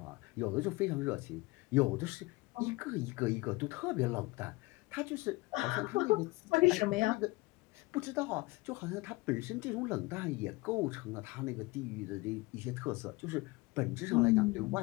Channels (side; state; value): right; quieter; 22.8 dB